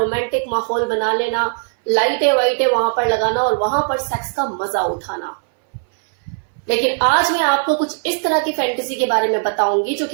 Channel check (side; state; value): left; silent; 64 dB below the other